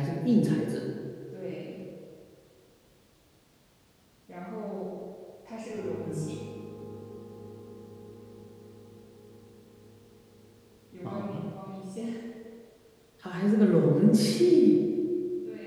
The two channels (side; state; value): both; identical; correlation 1.00